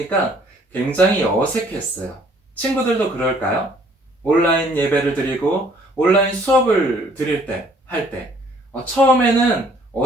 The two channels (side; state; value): both; normal; correlation 0.60